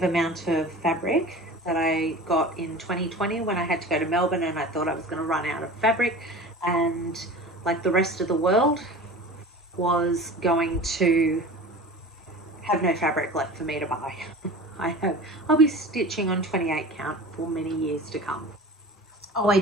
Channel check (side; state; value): both; normal; correlation 0.37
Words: amount of fabric that I got in 2020 when I had to go to Melbourne, and I thought I was going to run out of fabric, and like the rest of the world was going to have no fabric left for me to buy. I'll be stitching on 28 count for many years to come. Oh, I